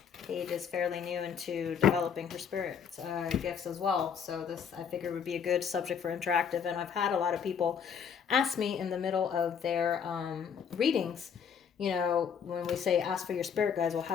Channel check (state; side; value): quieter; right; 7.2 dB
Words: Paige is fairly new into developing her spirit gifts as well. So this I figured would be a good subject for interactive. And I've had a lot of people ask me in the middle of their readings, when we say ask for your spirit guides, well,